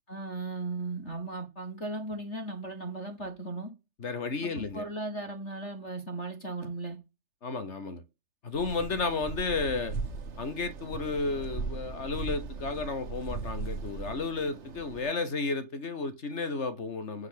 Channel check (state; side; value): late; right; 3.3 ms